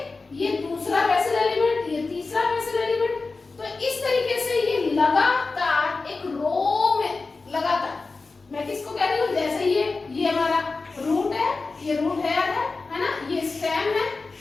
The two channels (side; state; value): right; quieter; 3.9 dB